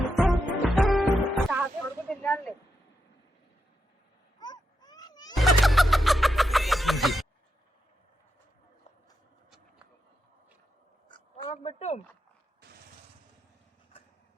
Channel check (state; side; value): normal; both; correlation 0.85